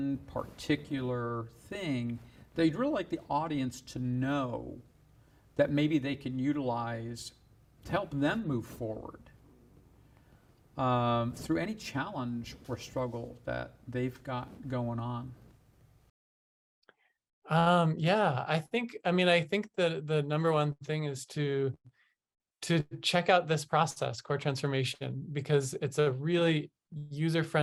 particular thing that you'd really like the audience to know that maybe they can utilize to help them move forward through any challenge or struggle that they've got going on. Yeah, I think the number one thing is to check out this process, core transformation, because it's a really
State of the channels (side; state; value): both; identical; correlation 1.00